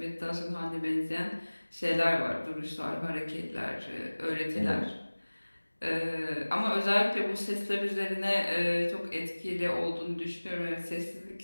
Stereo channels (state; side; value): inverted; both; correlation -1.00